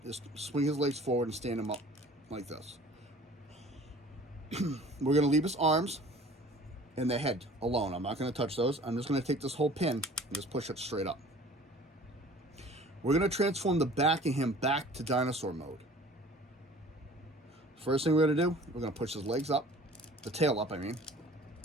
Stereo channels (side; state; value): both; normal; correlation 0.47